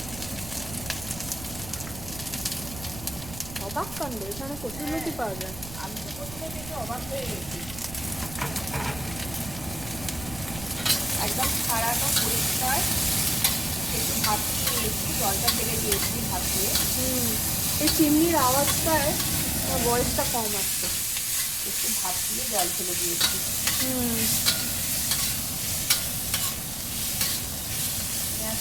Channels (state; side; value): noise; right; rumble, 13 dB below the sound